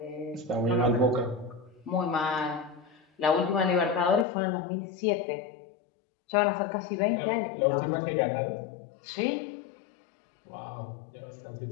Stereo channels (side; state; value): right; drops out; at 4.2 s